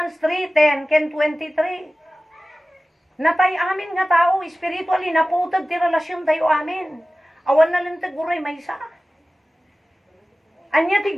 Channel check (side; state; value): both; normal; correlation 0.96